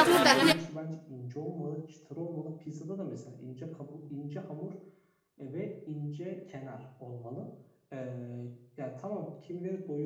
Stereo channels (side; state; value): both; identical; correlation 1.00